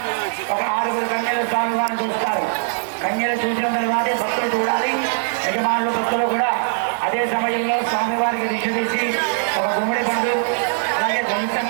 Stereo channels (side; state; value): left; silent; 65 dB below the other